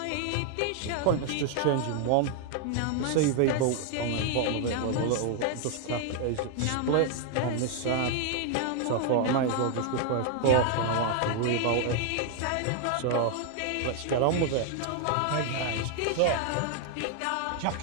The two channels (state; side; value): different; both; correlation 0.00